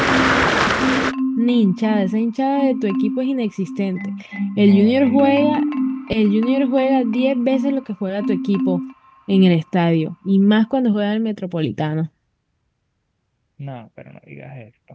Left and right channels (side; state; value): both; identical; correlation 1.00